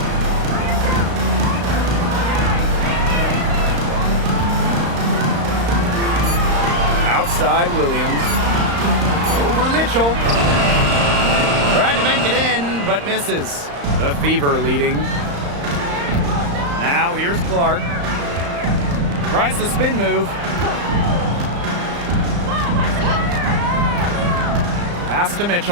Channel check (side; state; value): left; late; 35 ms